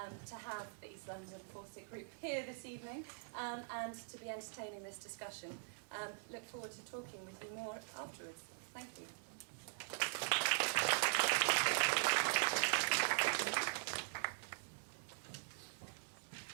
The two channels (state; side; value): silent; left; digital silence